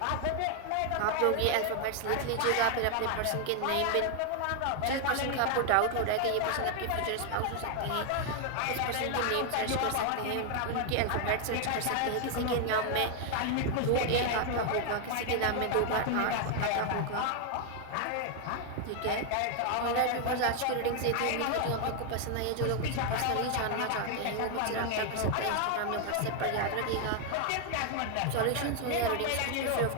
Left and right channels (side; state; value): both; different; correlation 0.00